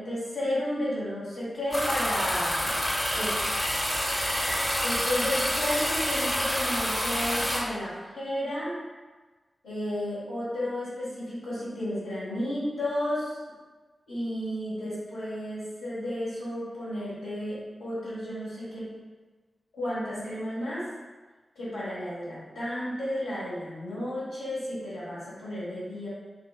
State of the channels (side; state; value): both; normal; correlation 0.93